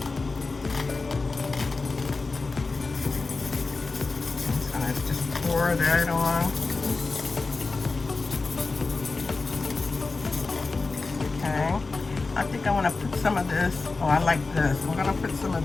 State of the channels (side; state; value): right; quieter; 3.8 dB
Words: I'm going to just pour that on. Okay. I think I want to put some of this. Oh, I like this. I'm going to put some of